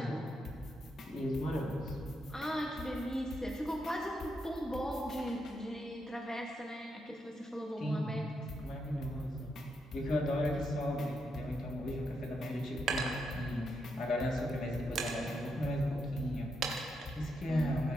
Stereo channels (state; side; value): normal; both; correlation 0.82